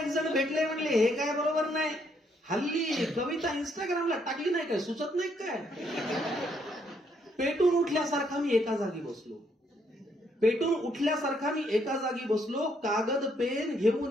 जण भेटले म्हणले हे काय बरोबर नाही. हल्ली कविता इंस्टाग्रामला टाकली नाही काय, सुचत नाही काय. पेटून उठल्यासारखा मी एका जागी बसलो. कागद पेन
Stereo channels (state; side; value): normal; both; correlation 0.72